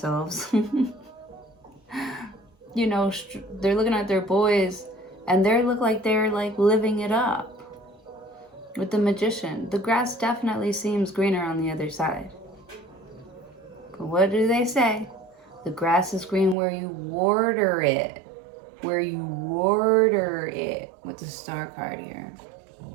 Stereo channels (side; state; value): left; drops out; at 16.6 s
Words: You know, they're looking at their boys and they look like they're like living it up. With the Magician, the grass definitely seems greener on the other side. But what do they say? The grass is green where you water it. Where you water it. With the Star card here.